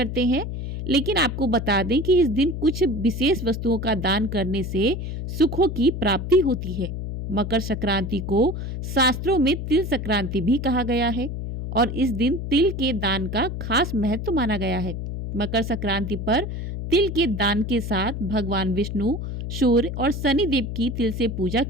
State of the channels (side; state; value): left; noise; hum, 5 dB below the sound